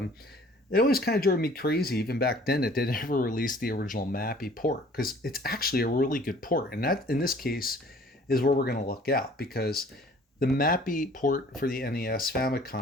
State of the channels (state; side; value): normal; both; correlation 0.53